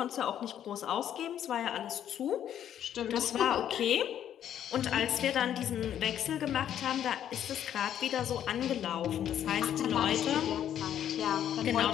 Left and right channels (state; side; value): quieter; right; 10.3 dB